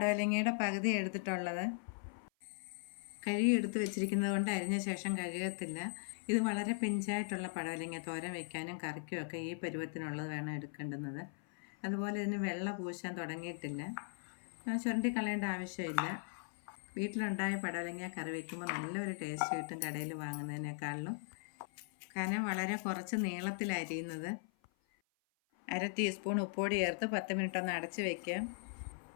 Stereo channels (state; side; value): silent; right; 52 dB below the other